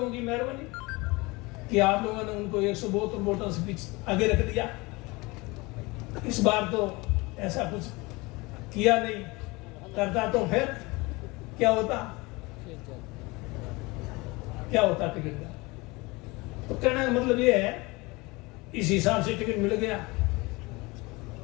की मेहरबानी कि आप लोगों ने उनको 172 वोटों से पीछे आगे रख दिया। इस बार तो ऐसा कुछ किया नहीं, करता तो फिर क्या होता टिकट का। तो कहने का मतलब ये है, इस हिसाब से टिकट मिल गया।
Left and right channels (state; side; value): quieter; right; 24.1 dB